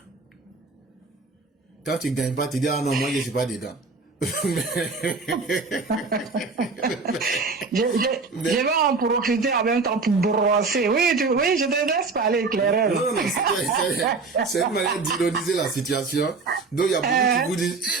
Quand tu ne gagnes pas, tu dis, ah non, moi, je ne suis pas dedans. Je vais en profiter en même temps pour brosser. Oui, je te laisse parler, Claire. Non, c'est une manière d'ironiser la situation. Donc, il y a beaucoup qui vous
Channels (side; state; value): left; quieter; 4.2 dB